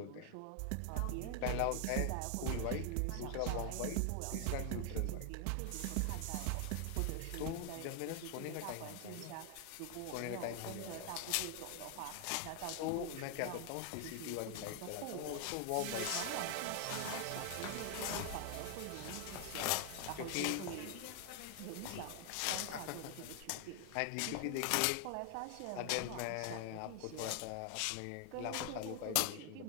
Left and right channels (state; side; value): different; both; correlation 0.00